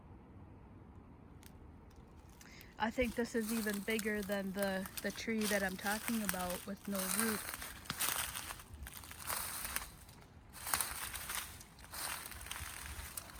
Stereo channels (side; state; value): both; identical; correlation 1.00